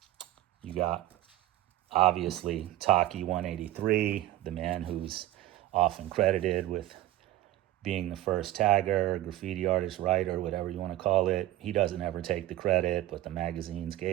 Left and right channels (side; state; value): left; quieter; 15.1 dB